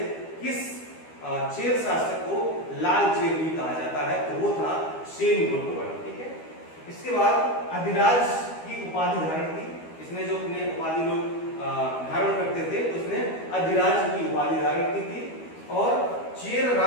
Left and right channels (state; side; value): late; right; 12 ms